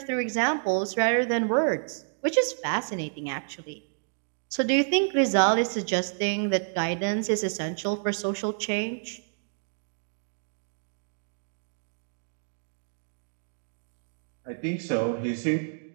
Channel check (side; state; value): left; silent; 59 dB below the other